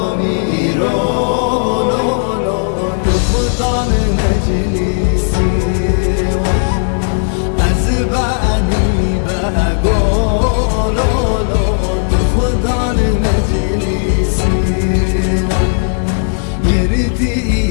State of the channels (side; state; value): right; silent; 69 dB below the other